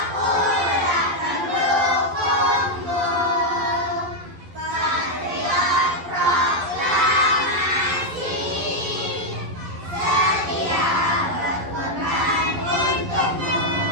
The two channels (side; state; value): left; late; 11 ms